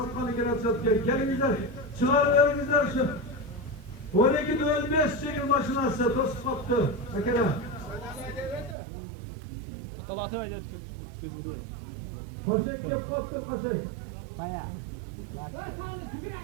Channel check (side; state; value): left; drops out; at 8.8 s